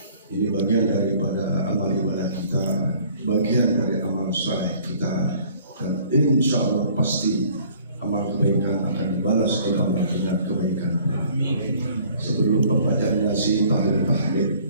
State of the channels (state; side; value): inverted; both; correlation -0.55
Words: Ini bagian daripada amal ibadah kita, bagian dari amal saleh kita, dan insya Allah pasti amal kebaikan akan dibalas oleh Allah dengan kebaikan. Sebelum pembacaan yasin,